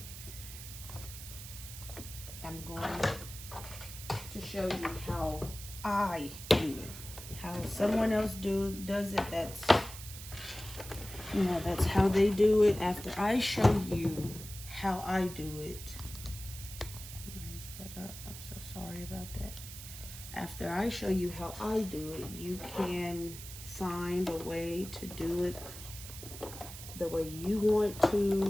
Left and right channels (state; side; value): noise; right; hiss, 12 dB below the sound